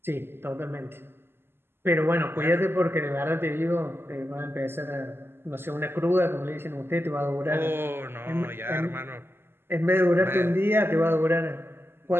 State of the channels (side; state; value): left; late; 0.11 ms